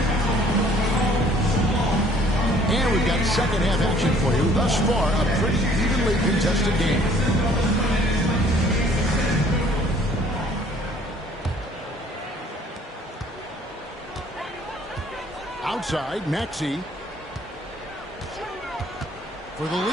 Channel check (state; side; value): normal; both; correlation 0.58